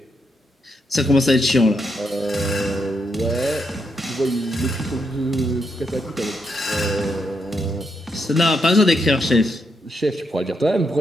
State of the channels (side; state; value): both; normal; correlation 0.80